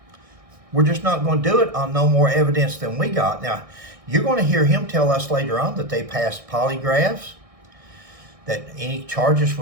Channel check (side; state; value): left; late; 1.6 ms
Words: We're just not going to do it on no more evidence than we got. Now, you're going to hear him tell us later on that they passed polygraphs, that any charges